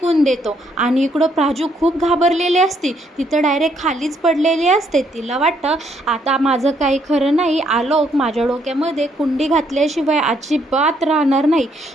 देतो आणि इकडं प्राजू खूप घाबरलेली असते, तिथं डायरेक्ट खालीच पडलेली असते. तिला वाटतं आता माझं काही खरं नाही, आलोक माझ्या डोक्यामध्ये कुंडी घातल्याशिवाय अजिबात राहणार नाही.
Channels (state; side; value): normal; both; correlation 0.71